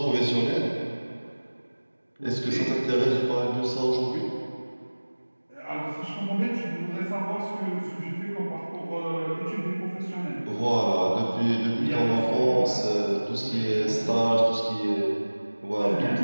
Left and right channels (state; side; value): inverted; both; correlation -1.00